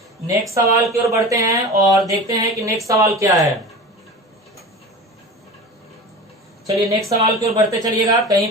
नेक्स्ट सवाल की ओर बढ़ते हैं और देखते हैं कि नेक्स्ट सवाल क्या है। चलिए नेक्स्ट सवाल की ओर बढ़ते चलिएगा, कहीं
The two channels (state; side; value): normal; both; correlation 0.33